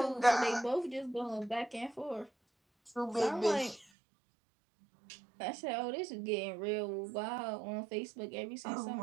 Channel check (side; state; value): left; drops out; at 3.9 s